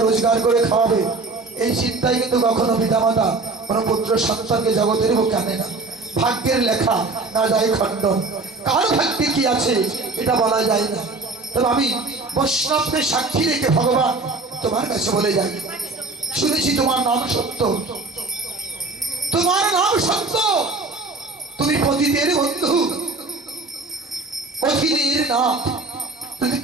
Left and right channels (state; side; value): quieter; left; 3.5 dB